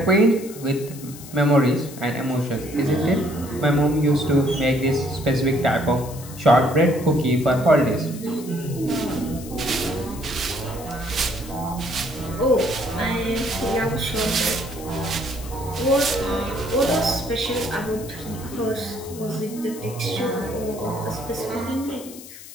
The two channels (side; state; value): left; noise; hiss, 16 dB below the sound